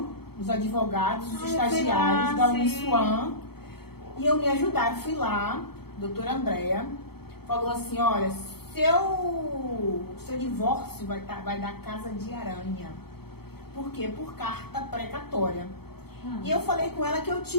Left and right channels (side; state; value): right; late; 0.96 ms